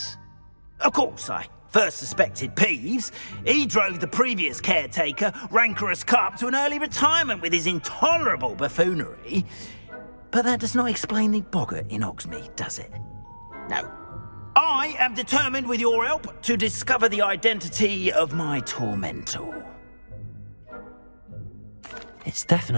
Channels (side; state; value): both; inverted; correlation -1.00